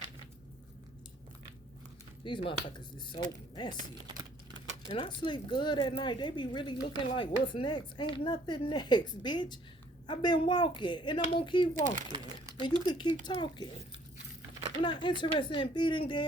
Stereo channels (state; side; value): normal; both; correlation 0.61